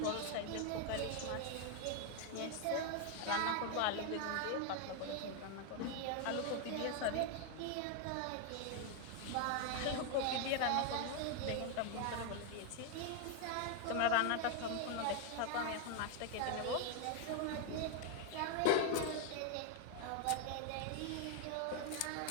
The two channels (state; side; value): different; both; correlation 0.00